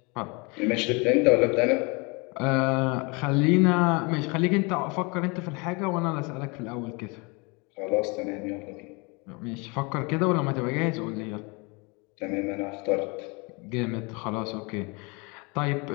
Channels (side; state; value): right; quieter; 29.4 dB